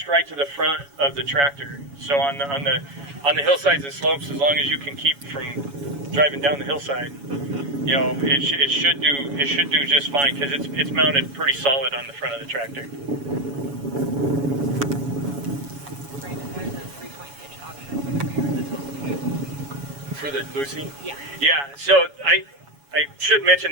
right to the front of the tractor. So on the hillsides and slopes, as long as you can keep from driving down the hillside, you know, it should do just fine because it's mounted pretty solid on the front of the tractor. Brandon, there's a 3-point hitch option for the rear that's also good. For the Lucy? Yeah. Yeah, so I should mention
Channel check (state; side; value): late; left; 7.1 ms